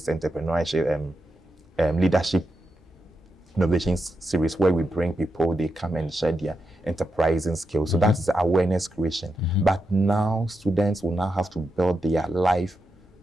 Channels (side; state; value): both; normal; correlation 0.86